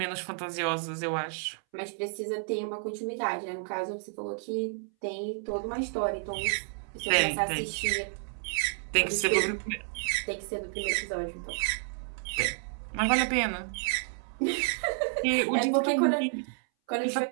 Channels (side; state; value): left; silent; 57 dB below the other